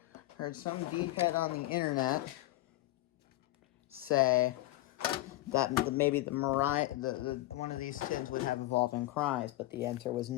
Heard some deephead on the internet say that maybe the one of these tins would have Evolving Cries, but the answer was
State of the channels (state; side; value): quieter; right; 17.2 dB